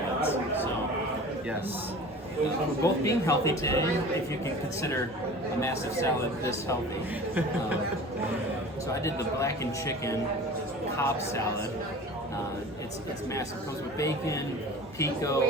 So, Yes. we're both being healthy today, if you can consider a massive salad this healthy. So I did the Blackened Chicken Cobb Salad. It's massive. It comes with bacon,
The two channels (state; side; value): normal; both; correlation 0.39